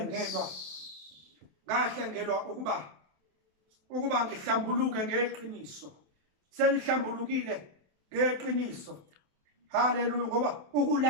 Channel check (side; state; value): left; late; 28 ms